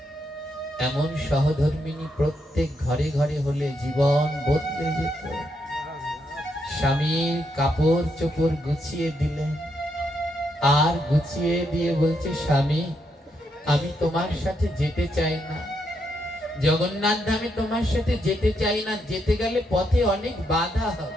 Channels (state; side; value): normal; both; correlation 0.79